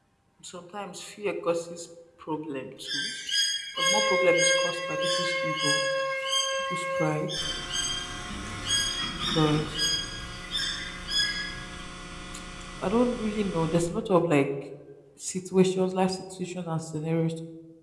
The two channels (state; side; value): identical; both; correlation 1.00